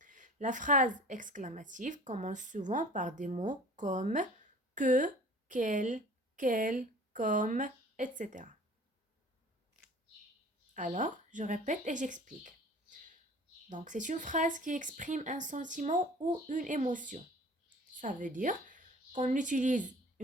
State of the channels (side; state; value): both; normal; correlation 0.46